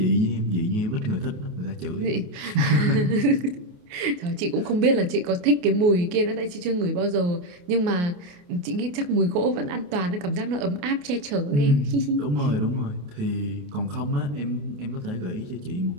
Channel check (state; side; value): late; left; 28 ms